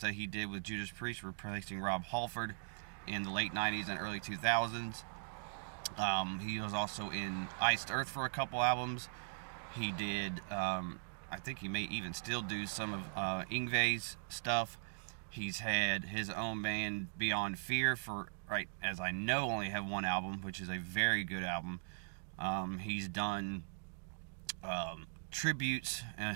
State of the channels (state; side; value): silent; left; digital silence